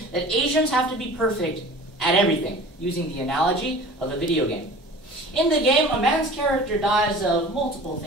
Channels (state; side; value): normal; both; correlation 0.42